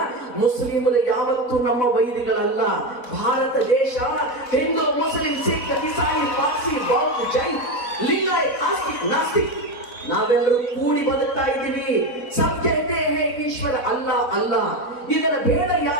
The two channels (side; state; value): right; late; 4.0 ms